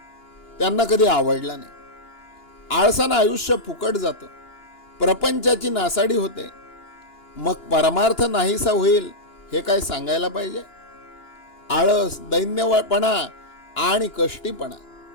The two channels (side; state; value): right; late; 2.9 ms